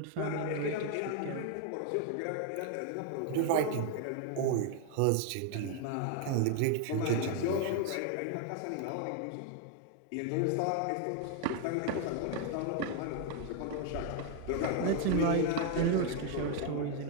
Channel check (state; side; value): different; both; correlation 0.00